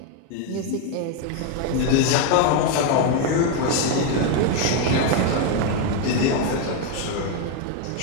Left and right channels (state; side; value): different; both; correlation 0.01